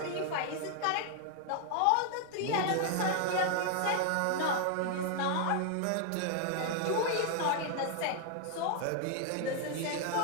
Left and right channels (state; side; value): different; both; correlation 0.00